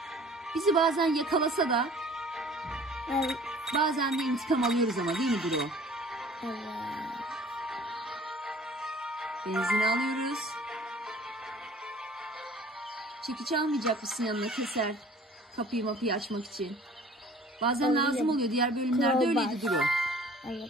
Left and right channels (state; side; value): normal; both; correlation 0.50